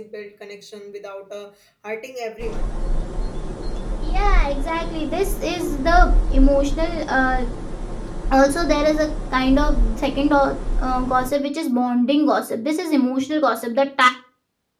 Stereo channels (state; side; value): identical; both; correlation 1.00